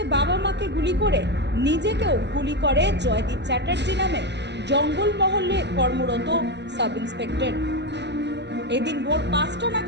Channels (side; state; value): left; late; 0.50 ms